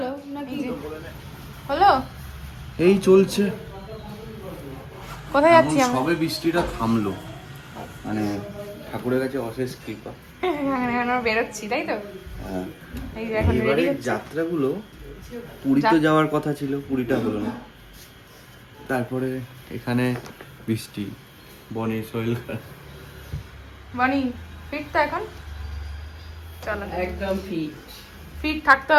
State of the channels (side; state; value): both; identical; correlation 1.00